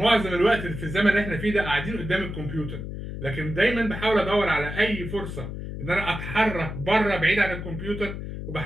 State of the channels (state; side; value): noise; left; hum, 7 dB below the sound